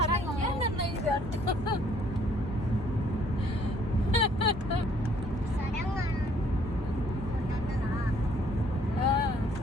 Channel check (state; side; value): normal; both; correlation 0.62